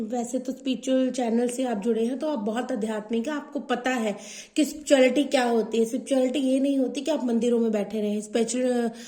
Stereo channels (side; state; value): both; identical; correlation 1.00